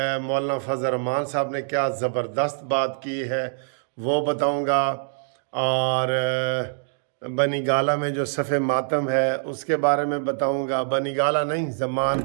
مولانا فضل الرحمان صاحب نے کیا زبردست بات کی ہے وہ بتاؤں گا، اور بنی گالہ میں جو صف ماتم ہے اس کے بارے میں بتاؤں گا۔ بنی گالہ نہیں،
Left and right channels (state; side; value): silent; left; digital silence